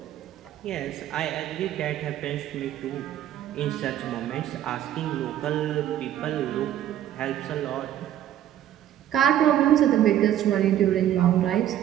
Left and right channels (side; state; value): left; quieter; 11.6 dB